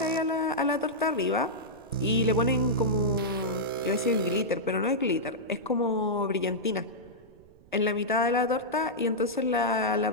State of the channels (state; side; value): noise; right; rumble, 26 dB below the sound